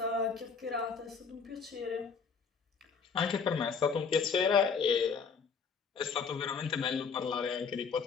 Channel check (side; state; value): right; quieter; 5.7 dB